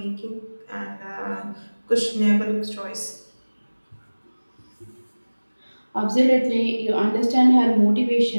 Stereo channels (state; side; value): inverted; both; correlation -1.00